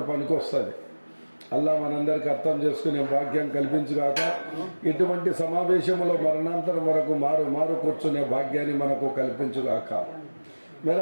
పనికొస్తుంది. అల్లా మనందరికి అర్థం చేసుకునే భాగ్యం కల్పించుగాక. ఇటువంటి సమావేశంలో మరణాంతరం వరకు మారు కూర్చునే భాగ్యాన్ని మనకు కల్పించుగాక. మేర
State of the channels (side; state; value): both; inverted; correlation -1.00